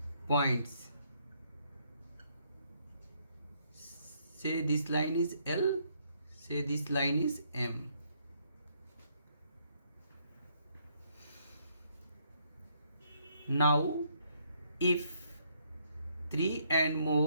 points. Say this line is L, say this line is M. Now, if 3 and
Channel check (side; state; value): both; inverted; correlation -0.71